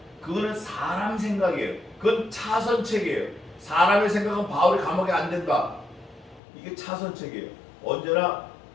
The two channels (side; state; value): right; drops out; at 6.4 s